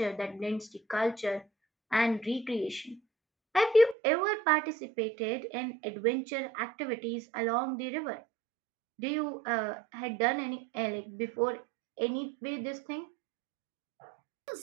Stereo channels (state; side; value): drops out; left; at 4.0 s